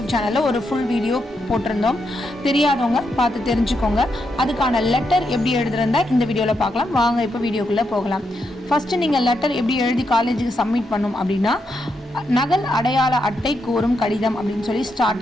சேனலில் ஒரு ஃபுல் வீடியோ போட்டிருந்தோம். தெரியாதவங்க பார்த்து தெரிஞ்சுக்கோங்க. அதுக்கான லெட்டர் எப்படி எழுதுறதா இந்த வீடியோவில் பார்க்கலாம். வாங்க இப்போ வீடியோக்குள்ளே போகலாம். ஃபஸ்ட்டு நீங்கள் லெட்டர் எப்படி எழுதி காலேஜுக்கு சப்மிட் பண்ணும் அப்படின்னா, நகல் அடையாள அட்டை கோரும் கடிதம் அப்படின்னு சொல்லி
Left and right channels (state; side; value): normal; both; correlation 0.82